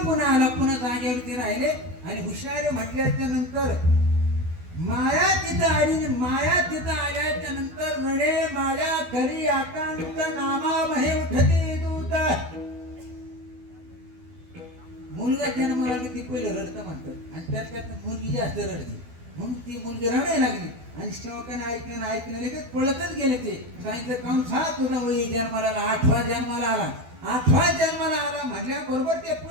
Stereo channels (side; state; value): left; late; 12 ms